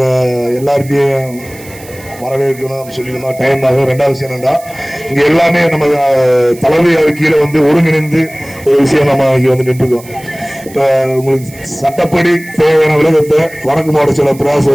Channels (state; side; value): noise; right; hiss, 20 dB below the sound